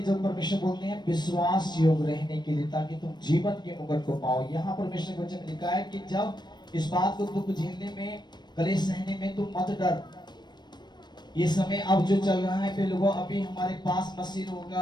जब परमेश्वर बोलते हैं विश्वास योग रहने के लिए, ताकि तुम जीवन के मुकुट को पाओ। यहाँ परमेश्वर के वचन में लिखा है कि जब इस बात को दुख झेलने में, कलेश सहने में तुम मत डर। ये समय अब जो चल रहा है, लोगों अभी हमारे पास मसीह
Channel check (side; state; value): right; late; 0.21 ms